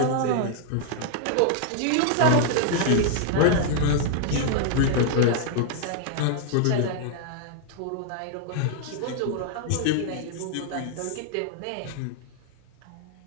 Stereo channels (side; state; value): both; different; correlation 0.00